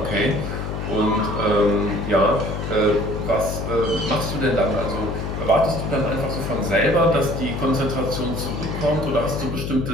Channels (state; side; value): noise; left; hum, 4 dB below the sound